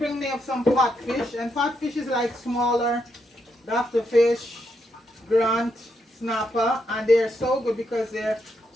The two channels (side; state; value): both; normal; correlation 0.80